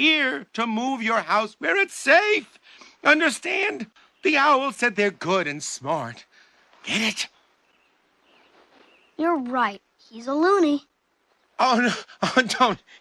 to move your house where it's safe. Understand? The owl said they're good and smart. Get it? You're right. He's a loony. Oh, no. Oh, don't.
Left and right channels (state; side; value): identical; both; correlation 1.00